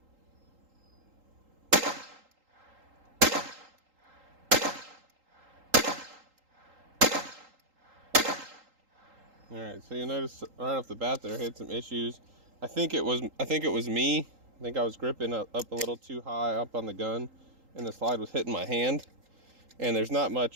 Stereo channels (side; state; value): left; late; 3.8 ms